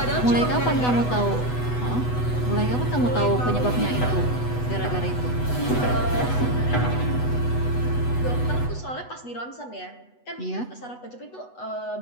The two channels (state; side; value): late; right; 8.1 ms